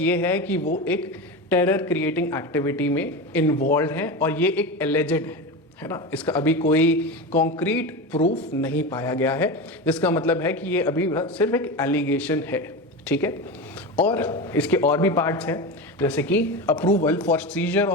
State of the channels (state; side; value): normal; both; correlation 0.23